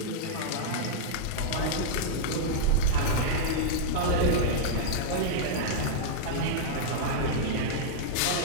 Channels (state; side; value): different; both; correlation -0.02